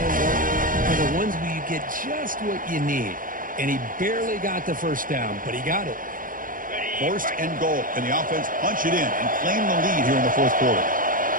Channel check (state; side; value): late; left; 0.40 ms